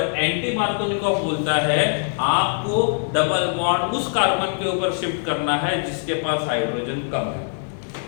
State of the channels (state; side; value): silent; right; digital silence